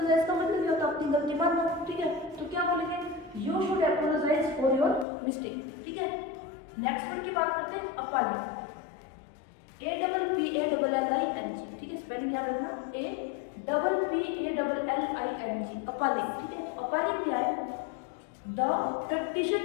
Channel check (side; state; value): right; drops out; at 5.1 s